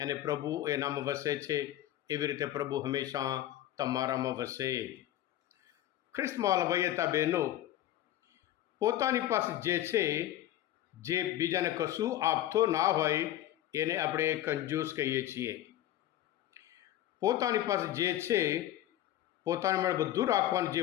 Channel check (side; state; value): right; quieter; 13.2 dB